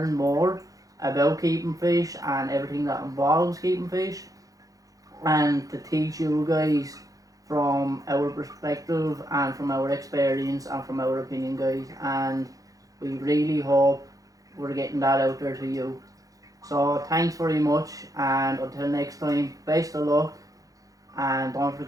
more about keeping fish and everything that involves keeping fish, and to teach you guys from our perspective and from our experience and from our opinion, guys, and we really hope we're getting that out there to you. So thanks very much, and until next time, best of luck, and don't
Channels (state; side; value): late; left; 0.17 ms